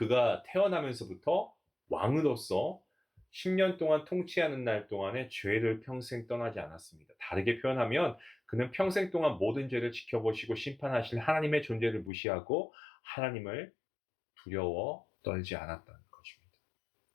태어나면서부터 왕으로서 10년 동안 통치하는 날 동안에 죄를 평생 떠나지 않았습니다. 다르게 표현하면 그는 평생 동안 모든 죄를 지켜보시고 심판하실 하나님의 존재를 무시하고 하나님을 두려워 떨지 않았다는 것입니다.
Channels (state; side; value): drops out; right; at 12.1 s